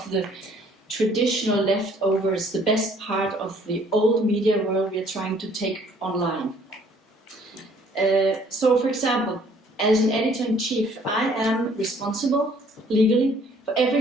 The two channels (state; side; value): normal; both; correlation 0.59